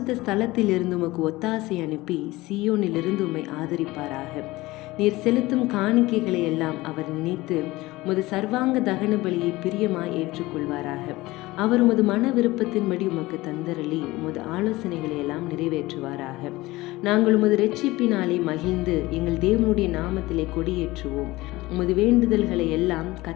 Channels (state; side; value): quieter; right; 19.7 dB